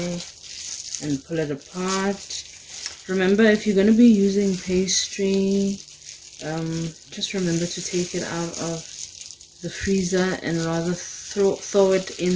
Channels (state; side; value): identical; both; correlation 1.00